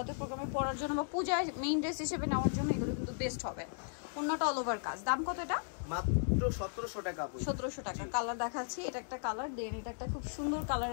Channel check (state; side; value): silent; right; digital silence